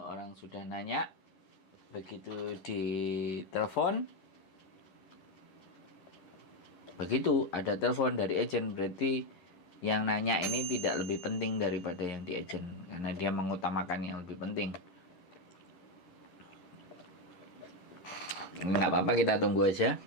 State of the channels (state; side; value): late; right; 10 ms